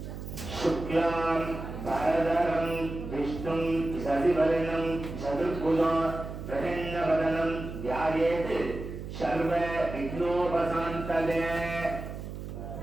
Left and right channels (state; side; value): noise; right; hum, 9 dB below the sound